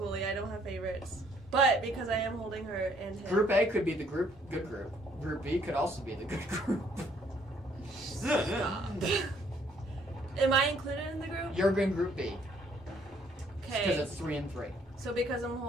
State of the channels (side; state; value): both; normal; correlation 0.65